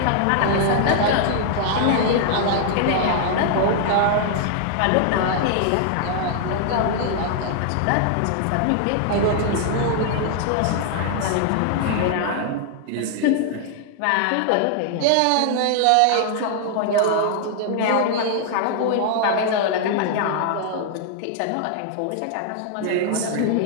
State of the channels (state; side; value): different; both; correlation 0.00